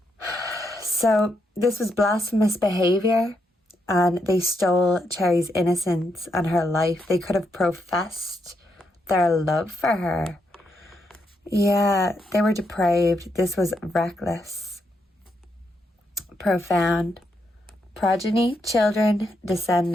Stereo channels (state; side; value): normal; both; correlation 0.80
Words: So this was blasphemous behavior, and they stole Cherrie's innocence and her life. They could have professed their love for her. Yeah, they were depraved. This was reckless. Profound. Progeny, children,